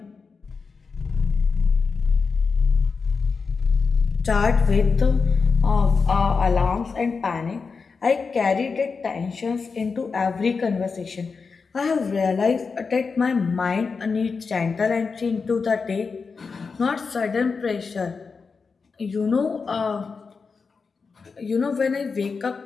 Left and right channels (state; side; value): quieter; right; 4.9 dB